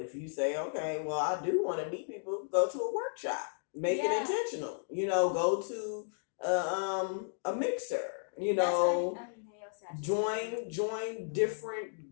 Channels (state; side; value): silent; right; digital silence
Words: you say, okay, well, I do want to meet people, go to a workshop, make it intentional. You know, go to a mixer. You know, join